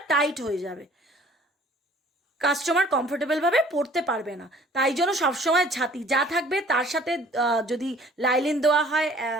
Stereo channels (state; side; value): normal; both; correlation 0.53